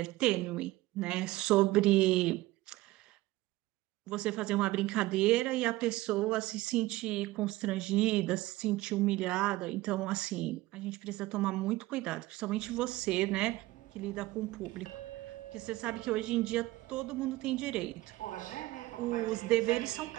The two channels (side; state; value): left; quieter; 18.3 dB